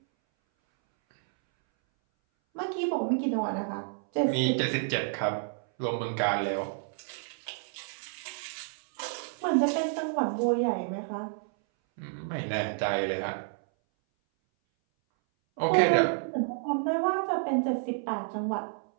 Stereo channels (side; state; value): left; silent; 58 dB below the other